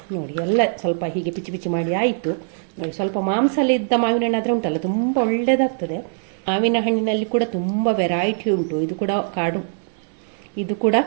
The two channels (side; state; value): left; silent; digital silence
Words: ನೋಡಿ, ಎಲ್ಲ ಸ್ವಲ್ಪ ಹೀಗೆ ಪಿಚಿ ಮಾಡಿ ಆಯಿತು ನೋಡಿ. ಸ್ವಲ್ಪ ಮಾಂಸಲ್ಲಿದ್ದ ಮಾವಿನ ಹಣ್ಣು ಆದರೆ ಉಂಟಲ್ಲ ತುಂಬ ಒಳ್ಳೆಯದಾಗ್ತದೆ. ಮಾವಿನ ಹಣ್ಣಿನಲ್ಲಿ ಕೂಡ ತುಂಬ ವೆರೈಟಿ ಉಂಟು. ಇದು ಕೂಡ